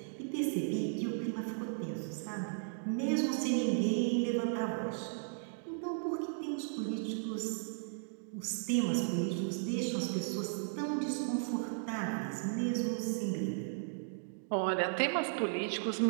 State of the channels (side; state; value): left; silent; digital silence